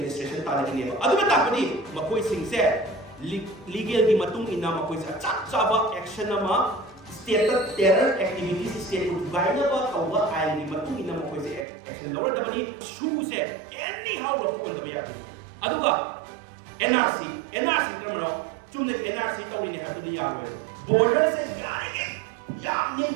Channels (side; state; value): left; drops out; at 11.7 s